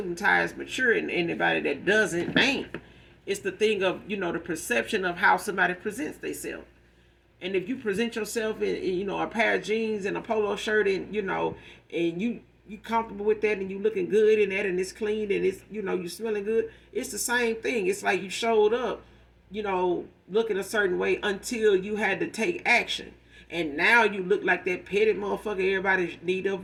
and tie is mature, and anybody that doesn't ain't. It's the thing of, the perception of how somebody presents themselves. And if you present yourself in a pair of jeans and a polo shirt, and, and you comfortable with that, and you looking good in that, and it's clean, and it's, you smelling good, it's the same thing. It's like you showed up, looking a certain way until you had to take action. And now you look like that petty motherfucker everybody need to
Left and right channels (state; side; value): identical; both; correlation 1.00